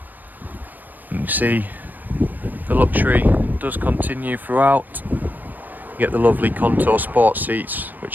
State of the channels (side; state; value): left; late; 0.085 ms